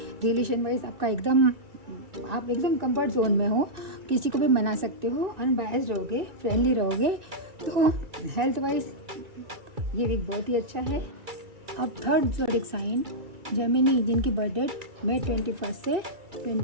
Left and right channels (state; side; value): late; left; 2.3 ms